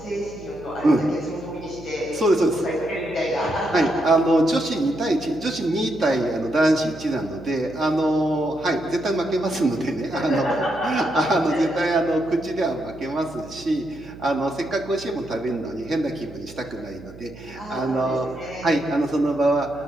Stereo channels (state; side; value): noise; right; hum, 18 dB below the sound